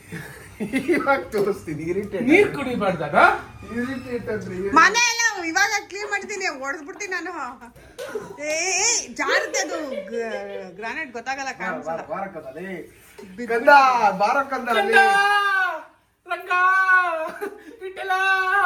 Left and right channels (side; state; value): both; identical; correlation 1.00